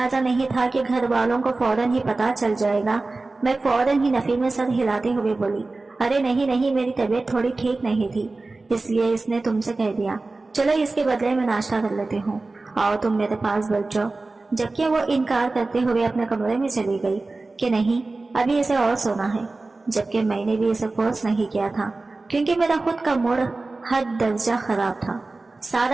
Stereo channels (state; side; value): quieter; left; 3.4 dB